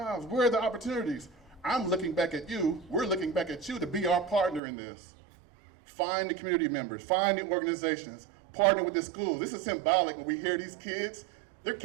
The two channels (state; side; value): drops out; left; at 4.6 s